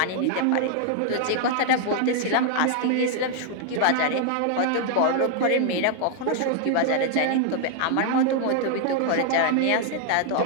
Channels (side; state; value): both; different; correlation 0.00